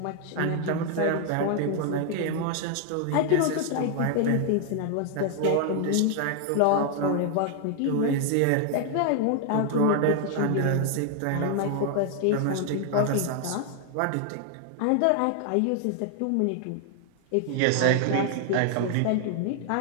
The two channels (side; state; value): both; different; correlation 0.00